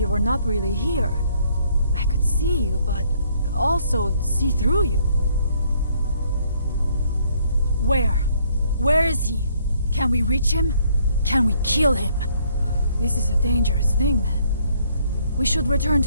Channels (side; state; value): both; inverted; correlation -0.66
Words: were not really here. I could see you, but also see through you. Where? Where is he? Can we reach him? Can we kill him? This is a dangerous thing, then. We should return